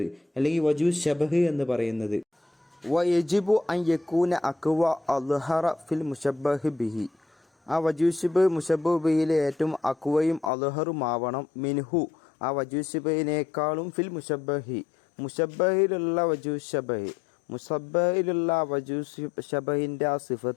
അല്ലെങ്കിൽ വജൂശബഹ് എന്ന് പറയുന്നത്. വയജിബു അൻ യകൂന അഖ്വ അദ്ഹറ ഫിൽ മുശബ്ബഹ് ബിഹി, ആ വജൂശിബ് മുശബ്ബഹ് ബിഹിയിലെ ഏറ്റവും അഖ്വയും അദ്ഹറുമാവണം മിൻഹു, ആ വജൂശിബഹിനേക്കാളും ഫിൽ മുശബ്ബഹി, മുശബ്ബഹിലുള്ള വജൂശബഹ്, മുശബ്ബഹിലുള്ള വജൂശബഹിൻ്റെ ആ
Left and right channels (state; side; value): drops out; right; at 10.5 s